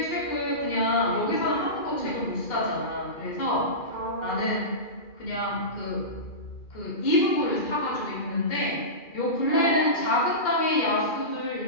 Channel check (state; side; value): late; right; 2.3 ms